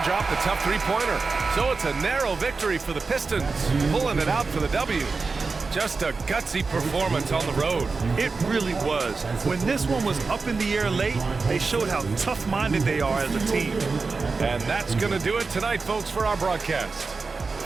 drop the tough three-pointer. So it's a narrow victory for the Pistons, pulling it out for the W. Just a gutsy performance on the road. It really was. When this one was up in the air late, they showed how tough-minded they are as a team. And that's going to do it tonight, folks, for our broadcast.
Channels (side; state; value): left; quieter; 4.3 dB